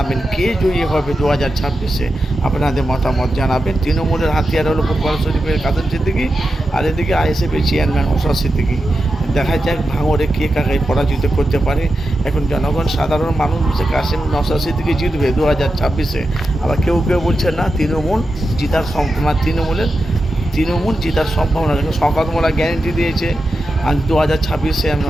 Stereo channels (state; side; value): normal; both; correlation 0.90